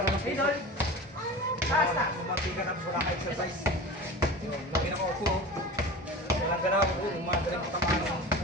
ng puso. Mamati ka na wala ka exercise. Lagi na ko upo. Walang ganaw ko. Umagaling ko tamaan ng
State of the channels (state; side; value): normal; both; correlation 0.34